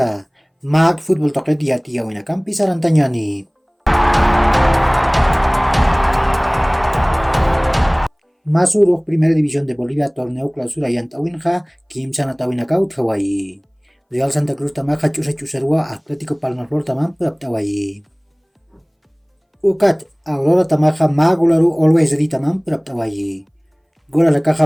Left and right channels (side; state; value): both; identical; correlation 1.00